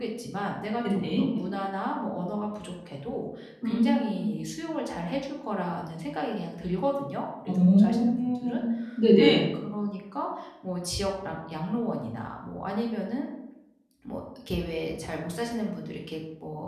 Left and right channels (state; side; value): identical; both; correlation 1.00